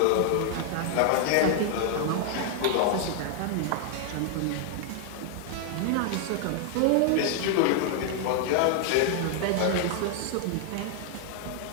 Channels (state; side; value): different; both; correlation 0.00